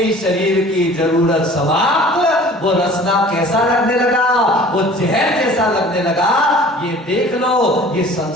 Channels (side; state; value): both; normal; correlation 0.46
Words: शरीर की जरूरत समाप्त, वो रसना कैसा लगने लगा? वो जहर जैसा लगने लगा। ये देख लो, ये